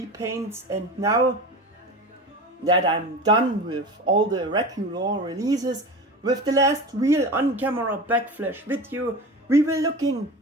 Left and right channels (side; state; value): both; normal; correlation 0.30